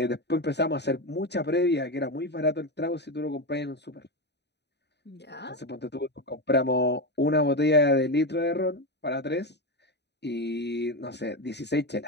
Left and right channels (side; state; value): right; late; 0.50 ms